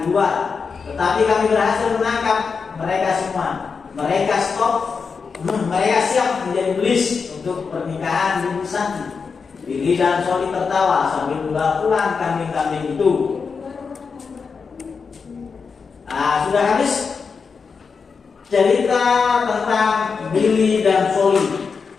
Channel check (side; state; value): right; quieter; 5.4 dB